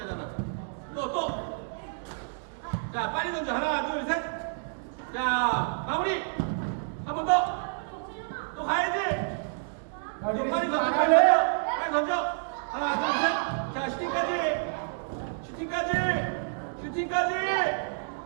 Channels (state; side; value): silent; left; digital silence